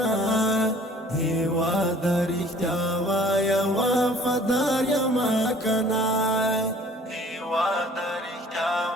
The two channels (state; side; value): normal; both; correlation 0.52